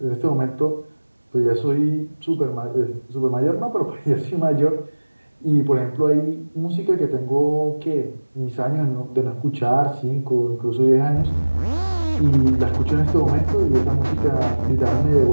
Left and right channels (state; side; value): inverted; both; correlation -1.00